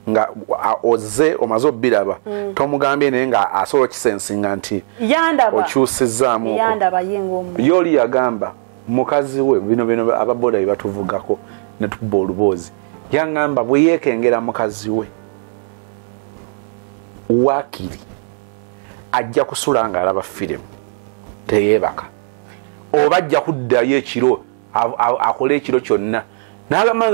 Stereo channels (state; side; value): silent; left; digital silence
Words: oze omaze obbiraba tomugambye naye nga asobola kisensinga nti okyusizzaamu yoli yagamba mukazi we bino ababoda bye batuvugako ne tukuba oluboozi yangamba bwe yeekengera mukazi we waakiri ajja kusula nga alaba firimu teyeebaka oba ajja kuddayo ekiro akole ekiro kyonna naye